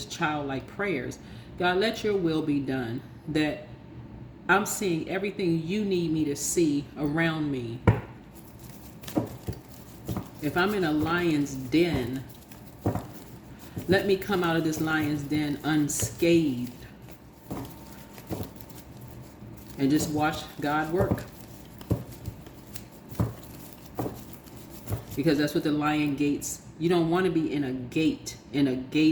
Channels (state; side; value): identical; both; correlation 1.00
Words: childlike prayers. God, let your will be done, that I'm seeing everything you need me to see around me. If I'm in a lion's den, let me come out of this lion's den unscathed and just watch God work. Because that's what the lion gates. You don't want to be in a gate, in a